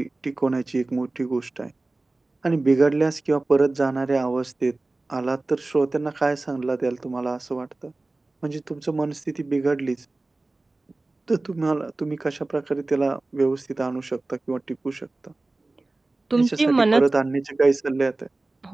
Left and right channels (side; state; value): left; quieter; 3.1 dB